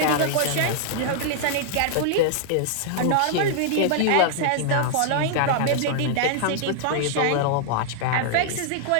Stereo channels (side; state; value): both; different; correlation -0.01